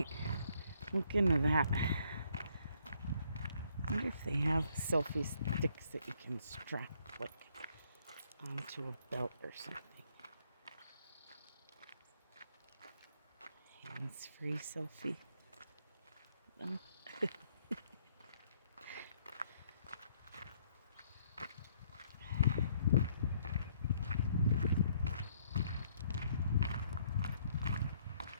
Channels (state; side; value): inverted; both; correlation -0.67